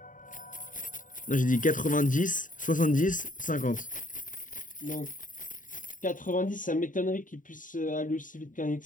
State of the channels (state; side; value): late; right; 0.38 ms